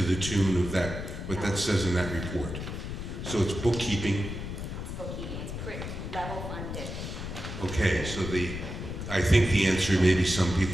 tune of that, what that says in that report? So it's bookkeeping. Bookkeeping, it's pretty level funded. Okay, so I think the answer maybe some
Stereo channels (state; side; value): noise; left; rumble, 6 dB below the sound